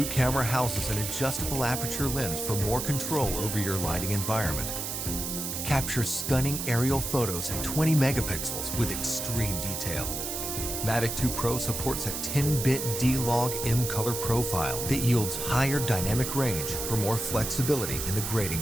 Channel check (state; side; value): noise; right; hiss, 4 dB below the sound